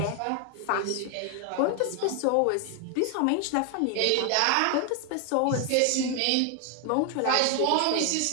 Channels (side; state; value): both; different; correlation 0.01